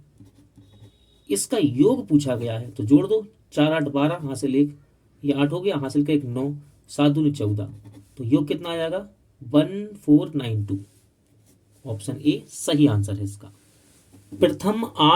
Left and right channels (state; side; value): identical; both; correlation 1.00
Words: इसका योग पूछा गया है, तो जोड़ दो, 4 8 12, हासिल 1, ये 8 हो गया, हासिल का 1 9, 7 दूनी 14, तो योग कितना आ जाएगा 1492। ऑप्शन ए सही आंसर है इसका। प्रथम